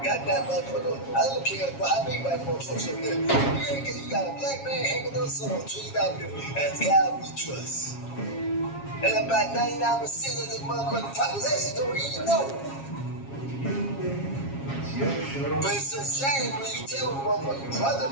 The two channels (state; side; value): late; right; 7.3 ms